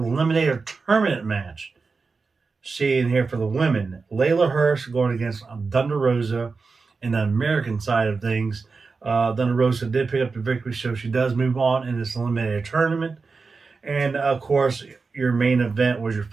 tournament match. Seeing here for the women, Layla Hirsch going against Thunder Rosa. In the American side of things, Thunder Rosa did pick up the victory, so she does move on in this eliminator tournament. And of course, your main event was your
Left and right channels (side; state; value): left; quieter; 4.5 dB